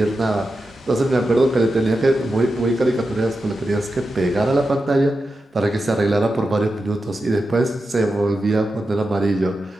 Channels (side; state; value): both; normal; correlation 0.90